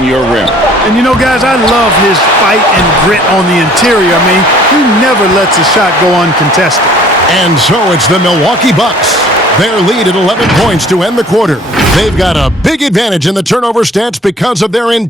your rim. And you know, guys, I love his fight and grit on the interior. I mean, he never lets a shot go uncontested. And so it's the Milwaukee Bucks. Their lead at 11 points to end the quarter. They've got a big advantage in the turnover stats because of their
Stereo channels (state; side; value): normal; both; correlation 0.53